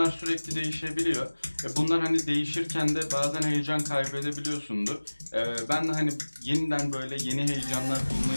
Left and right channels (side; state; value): both; inverted; correlation -1.00